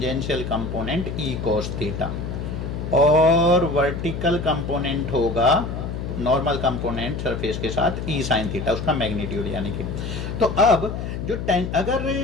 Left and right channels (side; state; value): left; noise; hum, 5 dB below the sound